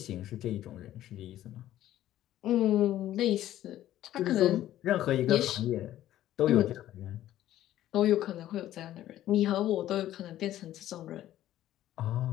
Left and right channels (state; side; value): quieter; right; 13.2 dB